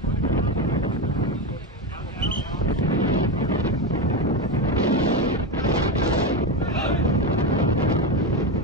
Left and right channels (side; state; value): both; normal; correlation 0.15